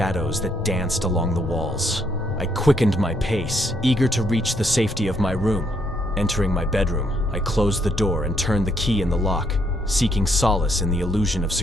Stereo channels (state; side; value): normal; both; correlation 0.72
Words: that danced along the walls. I quickened my pace, eager to reach the safety of my room. Entering my bedroom, I closed the door and turned the key in the lock, seeking solace in the illusion of